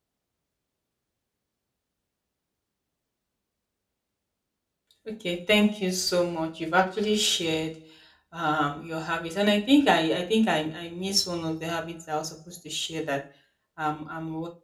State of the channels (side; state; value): both; identical; correlation 1.00